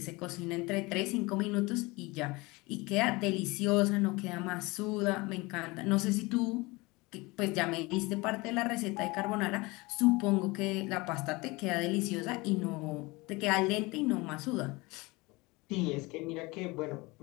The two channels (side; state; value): right; quieter; 23.8 dB